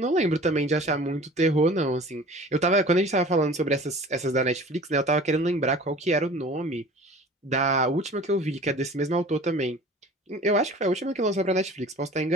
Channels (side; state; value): both; normal; correlation 0.43